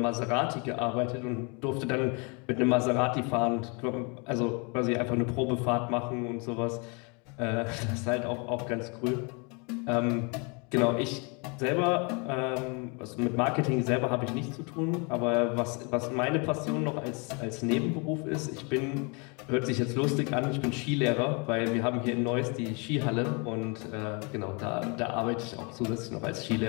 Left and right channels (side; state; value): right; quieter; 32.6 dB